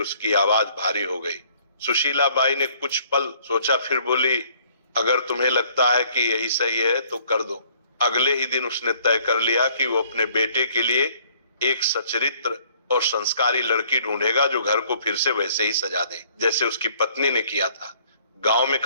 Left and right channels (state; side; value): inverted; both; correlation -0.60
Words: आवाज भारी हो गई। सुशीलाबाई ने कुछ पल सोचा, फिर बोली, अगर तुम्हें लगता है कि यही सही है तो कर दो। अगले ही दिन उसने तय कर लिया कि वो अपने बेटे के लिए एक सचरित्र और संस्कारी लड़की ढूंढेगा, जो घर को फिर से वैसे ही सजा दे जैसे उसकी पत्नी ने किया था। गांव में